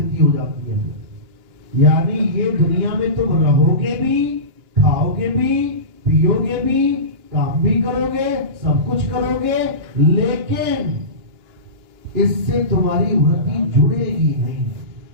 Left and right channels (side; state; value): left; late; 2.9 ms